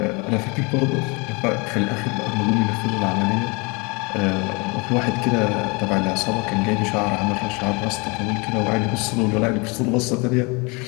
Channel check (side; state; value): right; quieter; 28.9 dB